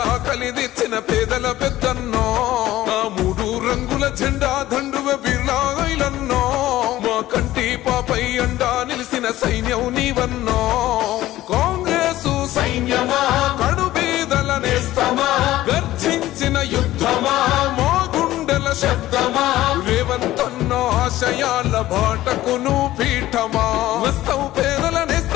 ఆకలి తెచ్చిన పేదల పెద్దన్నో ఆ మూడు రంగుల జెండా దండువే బిర్లా ఇలన్నో మా కంటి పాపై అండా నిలిసిన సైన్యం నీవన్నో కాంగ్రెసు సైన్యమా కడు పేదల నేస్తమా గర్జించిన యుద్ధమా మా గుండెల శబ్దమా రేవంతన్నో ఆశయాల బాటకును పీఠమా వస్తావు పేదల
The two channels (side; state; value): right; quieter; 15.3 dB